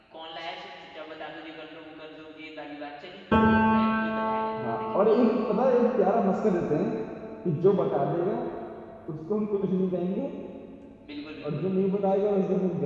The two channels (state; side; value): identical; both; correlation 1.00